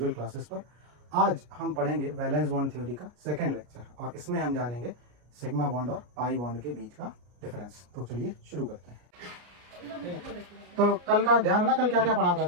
क्लासेस पर। आज हम पढ़ेंगे वैलेंस बॉन्ड थ्योरी का सेकंड लेक्चर और इसमें हम जानेंगे सिग्मा बॉन्ड और पाई बॉन्ड के बीच का डिफरेंस। तो चलिए शुरू करते हैं। तो कल का ध्यान है ना, कल क्या क्या पढ़ा था,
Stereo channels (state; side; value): late; left; 33 ms